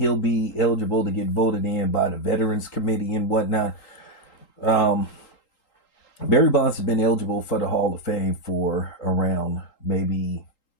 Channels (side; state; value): right; late; 3.8 ms